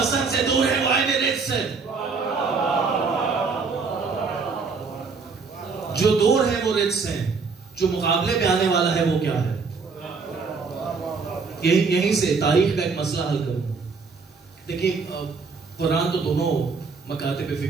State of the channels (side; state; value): left; quieter; 4.8 dB